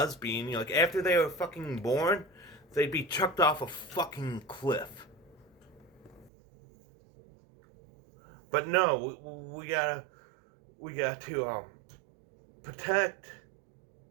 like after they were fucking born, they'd be chucked off a fucking cliff. But no, we got to protect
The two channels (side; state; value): left; drops out; at 6.3 s